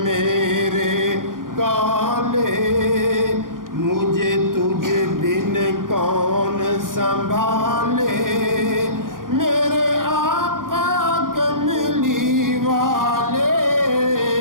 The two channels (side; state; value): left; late; 0.90 ms